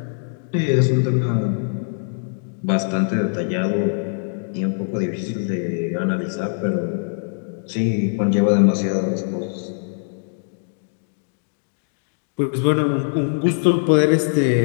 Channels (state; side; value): silent; right; digital silence